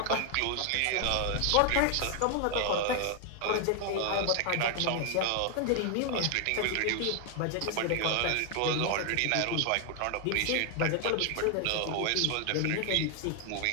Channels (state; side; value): different; both; correlation 0.00